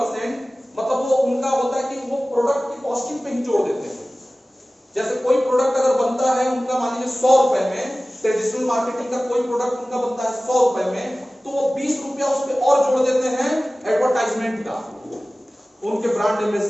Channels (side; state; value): both; normal; correlation 0.97